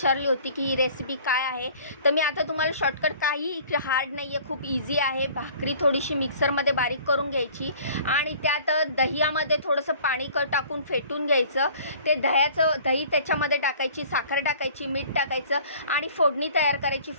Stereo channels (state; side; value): inverted; both; correlation -0.49